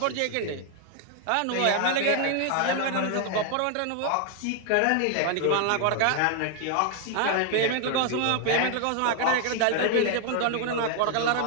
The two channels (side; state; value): both; different; correlation 0.00